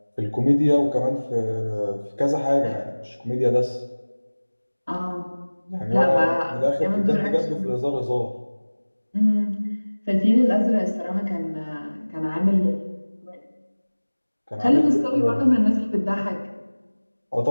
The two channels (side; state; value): both; inverted; correlation -1.00